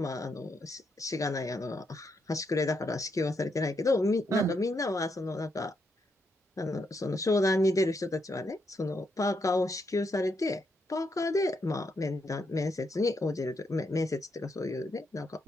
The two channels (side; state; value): both; normal; correlation 0.79